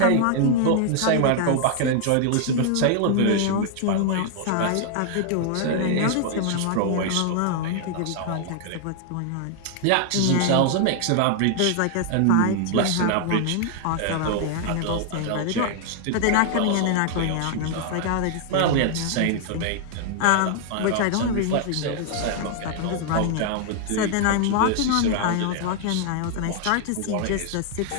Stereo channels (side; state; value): both; different; correlation 0.00